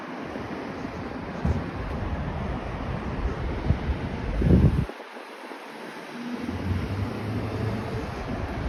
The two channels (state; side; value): identical; both; correlation 1.00